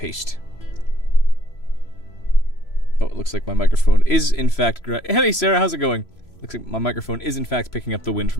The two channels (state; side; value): late; right; 3.0 ms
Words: Oh, it looks like my microphone is in fact Hey Sarah, how's it going? Looks like my microphone is in fact picking up the wind